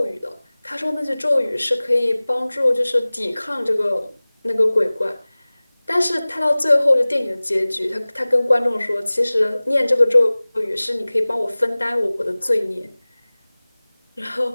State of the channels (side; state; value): both; inverted; correlation -0.99